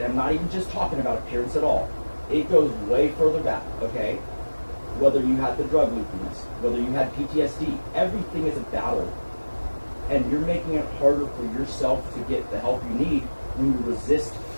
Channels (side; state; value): both; inverted; correlation -1.00